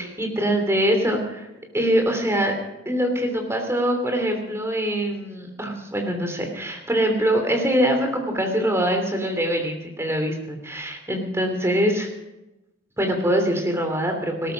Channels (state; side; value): normal; both; correlation 0.58